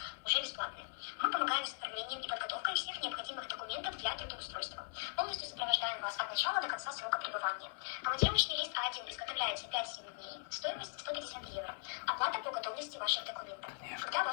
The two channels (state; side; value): silent; right; 51 dB below the other